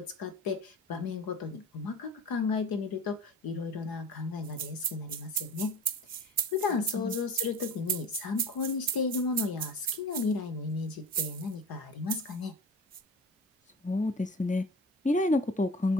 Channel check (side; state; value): both; normal; correlation 0.37